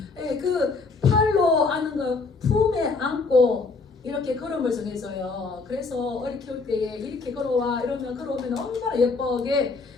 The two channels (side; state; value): right; quieter; 4.1 dB